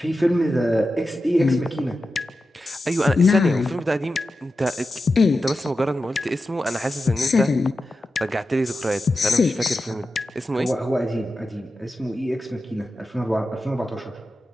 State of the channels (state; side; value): normal; both; correlation 0.91